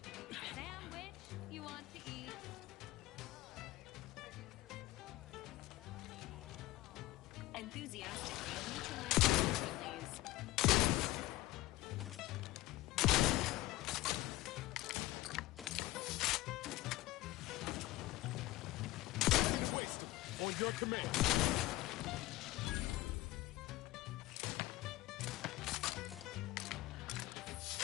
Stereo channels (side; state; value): right; quieter; 17.7 dB